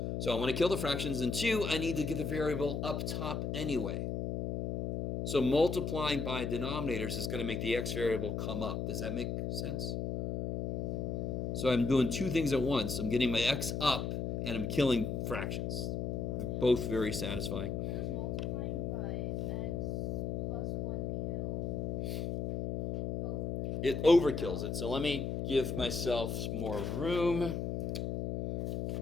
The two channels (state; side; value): noise; left; hum, 2 dB below the sound